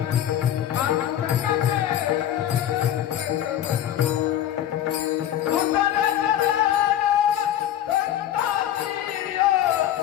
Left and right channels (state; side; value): quieter; right; 11.4 dB